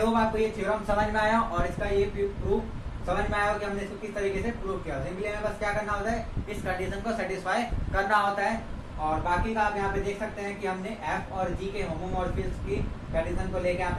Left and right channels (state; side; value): identical; both; correlation 1.00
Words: आपको ये थ्योरम समझ में आया और इसका ये प्रूफ समझ में आया कि हमने इसको किस तरीके से प्रूव किया। सिंपली हमें बस क्या करना होता है, इस कंडीशन को सेटिस्फाई करना होता है, और बाकी का आप यहाँ पे देख सकते हैं कि हमने f और g के होमोमॉर्फिज्म की कंडीशन को लेके यहाँ